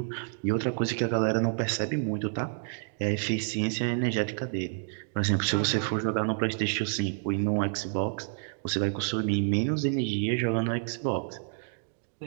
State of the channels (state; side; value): silent; left; digital silence